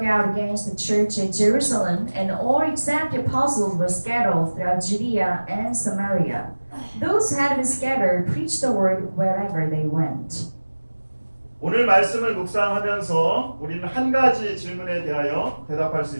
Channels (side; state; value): both; inverted; correlation -1.00